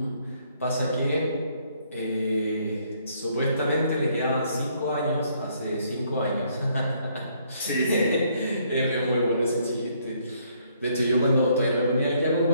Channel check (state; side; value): inverted; both; correlation -0.68